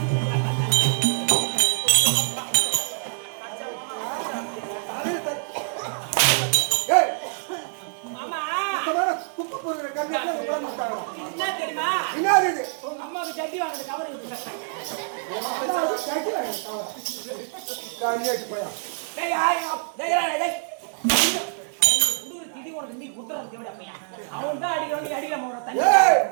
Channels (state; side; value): silent; left; 56 dB below the other